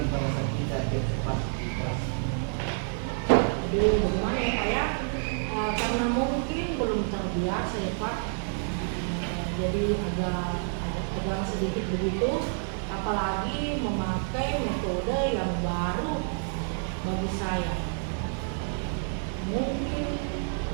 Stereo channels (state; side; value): silent; left; 59 dB below the other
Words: pada saat kita diobservasi di kelas? Jadi bagaimana ya Pak ya? Karena mungkin belum terbiasa ya Pak. Jadi agak sedikit begitu, apalagi memakai metode yang baru bagi saya. Mungkin